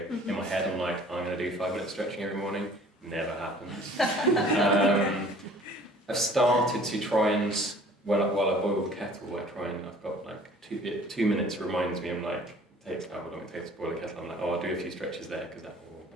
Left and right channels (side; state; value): both; normal; correlation 0.51